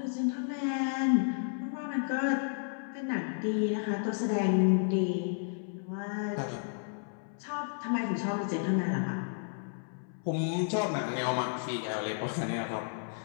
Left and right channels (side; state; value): right; silent; 56 dB below the other